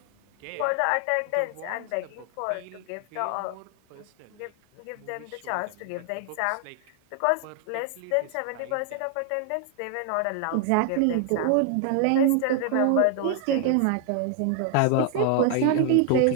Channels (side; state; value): both; different; correlation 0.00